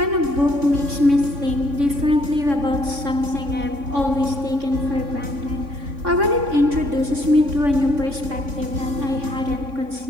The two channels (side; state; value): left; late; 3.6 ms